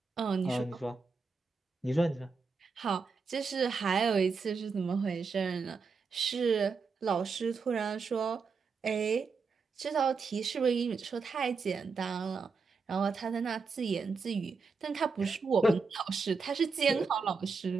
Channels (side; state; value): left; quieter; 4.8 dB